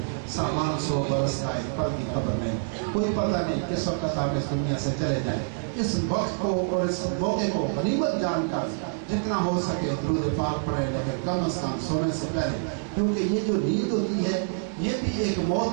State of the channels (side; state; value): left; silent; digital silence